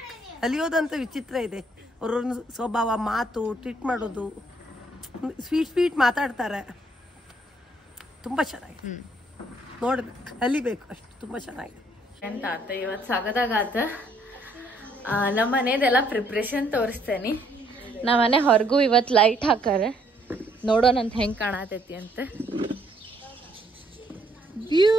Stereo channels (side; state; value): both; normal; correlation 0.67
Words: ಕಲಿಯೋದಂತ ವಿಚಿತ್ರ ಇದೆ. ಅವ್ರವ್ರ ಸ್ವಭಾವ, ಮಾತು, ಟ್ರೀಟ್ ಮಾಡೋದು, ಸ್ವೀಟ್ ಮಾತಾಡ್ತಾರೆ. ತುಂಬ ಚೆನ್ನಾಗಿದೆ, ನೋಡ್ಬೇಕು, ಕಲಿಬೇಕು ಅಷ್ಟು. ತುಂಬ ಚೆನ್ನಾಗಿದೆ ಅಂತ ಆತ ಇವತ್ತು ಸಾಗದಾಗಾತ. ನಮ್ಮ ಮನೇದೆಲ್ಲ ಪ್ರಿಪ್ರೇಷನ್ ತೋರಿಸ್ತೇನೆ. ನಮ್ಮ ಮನೆ ಹೊರಗೂ ಇವತ್ತು ಲೈಟ್ ಹಾಕಾರ, ನೋಡೋಣಂತ ಹೆಂಗೆ ಕಾಣತೈತಿ ಅಂತ.